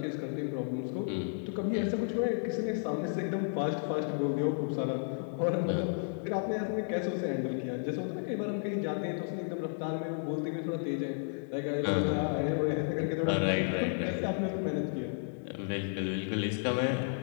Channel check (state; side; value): silent; right; digital silence